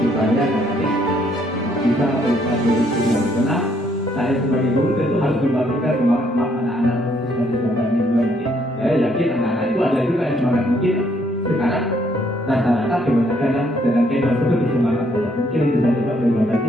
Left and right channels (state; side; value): normal; both; correlation 0.69